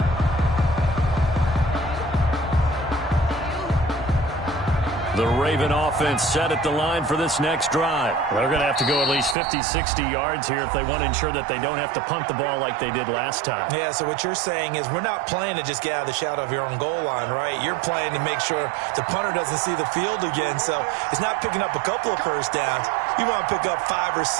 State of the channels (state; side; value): drops out; left; at 9.3 s